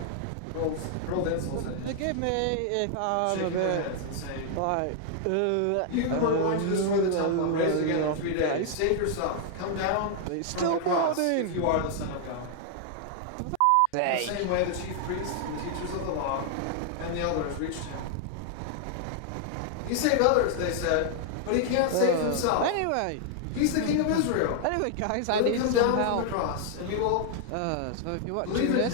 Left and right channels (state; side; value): different; both; correlation 0.00